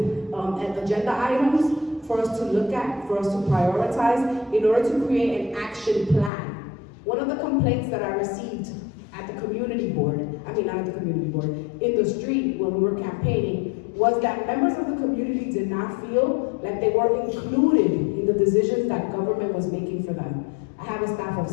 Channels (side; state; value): right; drops out; at 6.3 s